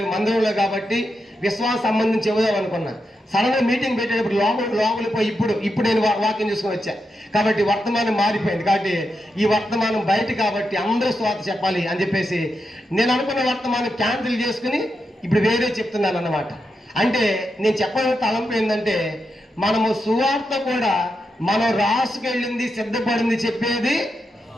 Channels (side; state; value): both; normal; correlation 0.86